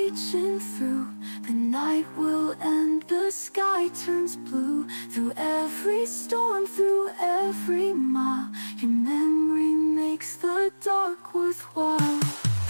through. The night will end, the sky turns blue. Through every storm, through every mile, your memory makes the dark worthwhile.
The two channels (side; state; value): both; inverted; correlation -1.00